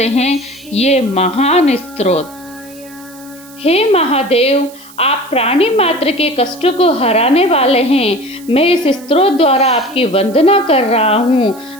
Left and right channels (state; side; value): noise; right; hiss, 22 dB below the sound